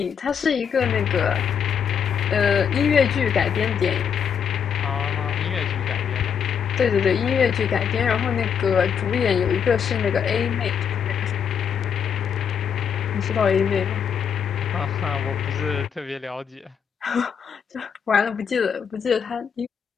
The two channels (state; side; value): quieter; right; 7.4 dB